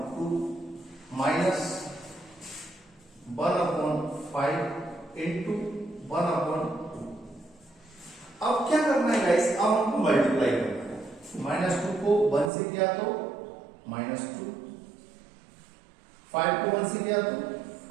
माइनस 1/5 इंटू 1/2। अब क्या करना है गाइस? अब हमको मल्टीप्लाई करना है। -2 को 1 से किया तो -2, 5 को 1 से किया तो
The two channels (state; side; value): drops out; left; at 12.5 s